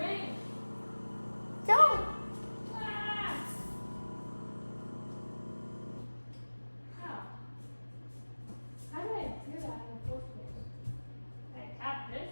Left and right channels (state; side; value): inverted; both; correlation -1.00